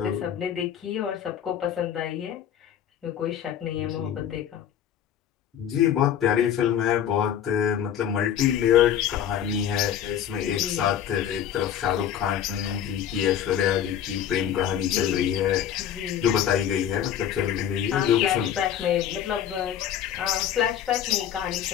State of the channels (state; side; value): quieter; right; 9.8 dB